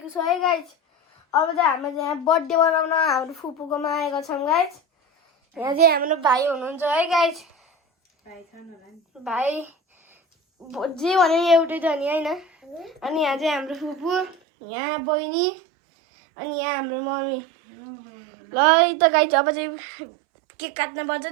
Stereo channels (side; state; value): left; drops out; at 14.4 s